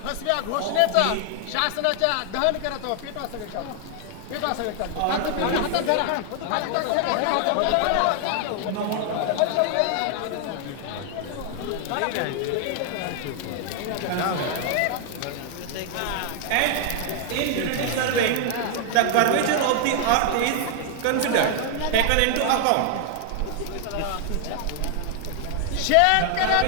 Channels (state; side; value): different; both; correlation 0.00